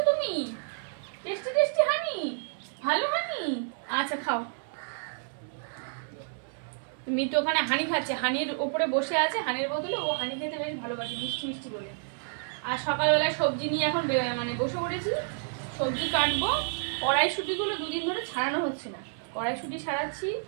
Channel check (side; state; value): left; silent; 58 dB below the other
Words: তুমি? টেস্টি টেস্টি হানি, ভালো হানি। আচ্ছা খাও। মিতু ওখানে হানি খাচ্ছে, হানির ওপরে বসে আছে, হানির বদলে ও হানি খেতে বেশ ভালোবাসে, মিষ্টি মিষ্টি বলে। আর সকালবেলায় সবজি নিয়ে এখন মানে বসে পড়েছি, সবজি কাটবো। কড়াইশুঁটিগুলো দুদিন ধরে ছাড়ানো হচ্ছে না, কড়াইশুঁটি ছাড়াচ্ছি।